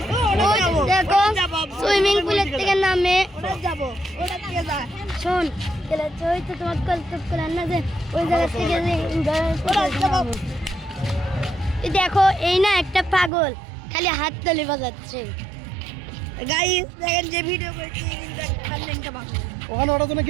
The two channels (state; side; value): drops out; left; at 13.3 s